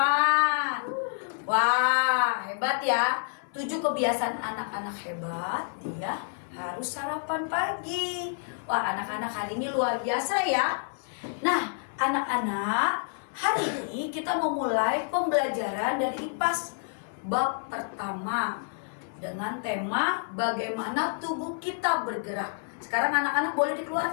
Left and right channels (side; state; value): right; silent; 58 dB below the other